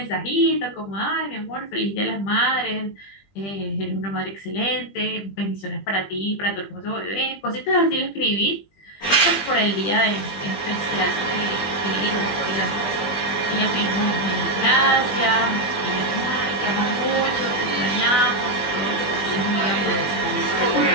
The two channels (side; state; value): right; late; 20 ms